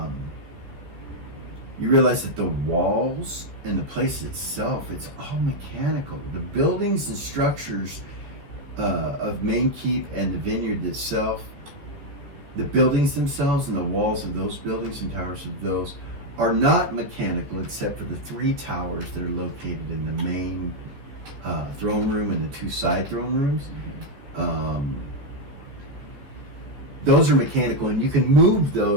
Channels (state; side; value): late; left; 14 ms